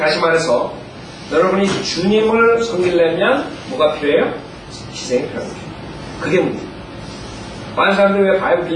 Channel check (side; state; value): both; identical; correlation 1.00